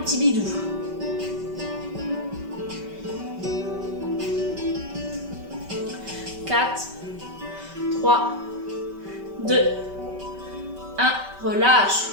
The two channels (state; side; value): late; left; 5.2 ms